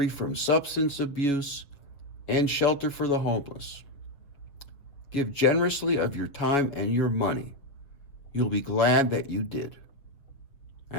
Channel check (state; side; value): late; right; 6.8 ms